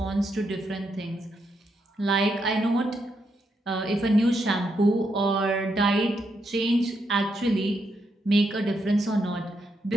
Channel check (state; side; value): normal; both; correlation 0.80